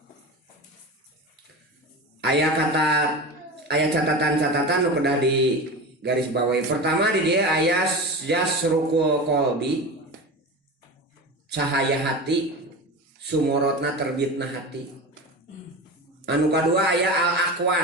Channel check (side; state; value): both; normal; correlation 0.27